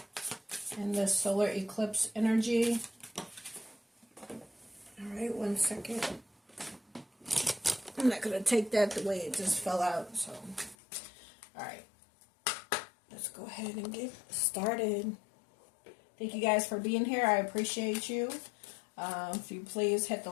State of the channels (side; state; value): right; drops out; at 10.8 s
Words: and the solar eclipse energy? Alright, one second. I'm not going to take that the way it just fell out. So, alright. Let's go ahead and get started. Thank you guys for being here. I appreciate you. If you please hit the